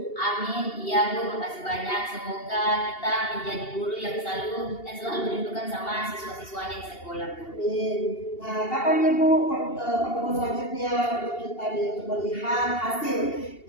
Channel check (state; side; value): late; right; 2.8 ms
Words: Amin. Iya, Bu. Makasih banyak. Semoga kita menjadi guru yang selalu merindukan sama siswa-siswanya di sekolah, Bu. Amin. Nah, kapan nih Bu pertemuan selanjutnya untuk kita untuk melihat hasil